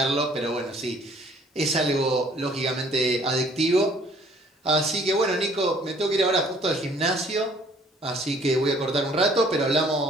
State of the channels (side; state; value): both; normal; correlation 0.58